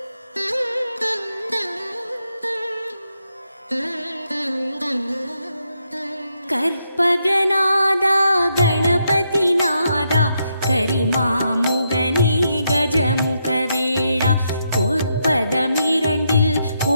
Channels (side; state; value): both; inverted; correlation -0.80